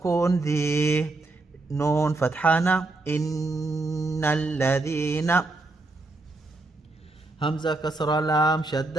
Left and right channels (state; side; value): quieter; left; 3.1 dB